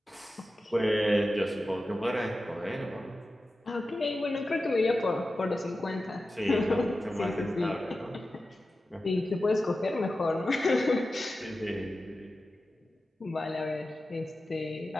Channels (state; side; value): normal; both; correlation 0.93